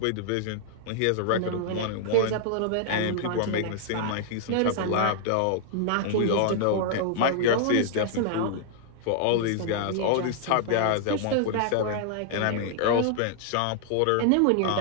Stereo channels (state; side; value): different; both; correlation 0.00